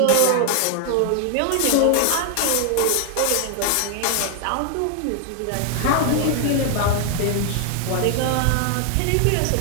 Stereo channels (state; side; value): different; both; correlation 0.00